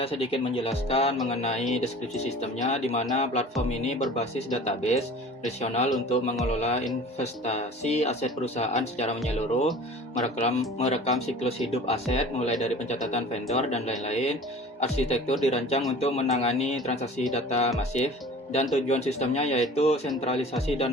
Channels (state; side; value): normal; both; correlation 0.42